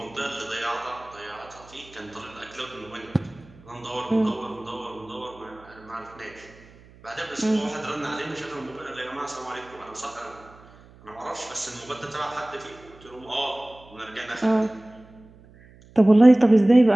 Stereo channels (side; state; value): right; noise; hum, 24 dB below the sound